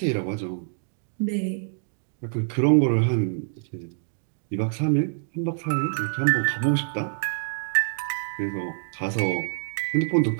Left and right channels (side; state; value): left; silent; digital silence